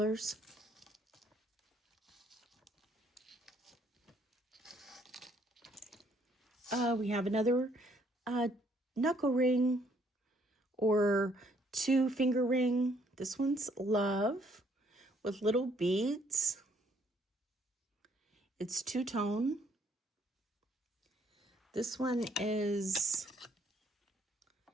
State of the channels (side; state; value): both; normal; correlation 0.66